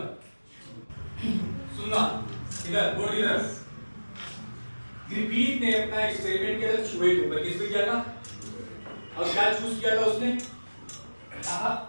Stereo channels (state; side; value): inverted; both; correlation -1.00